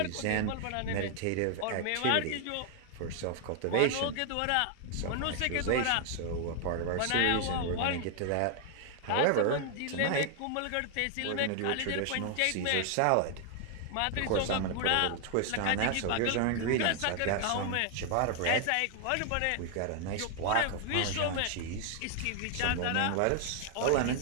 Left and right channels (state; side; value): different; both; correlation 0.00